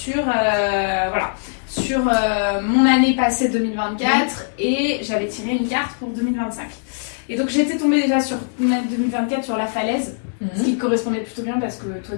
mon année passée 2024 et j'avais tiré une carte pour 2025. Et donc j'étais tombée déjà sur mon année 2024 sur la falaise, ce qui correspondait plutôt bien parce que toi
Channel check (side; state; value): right; silent; digital silence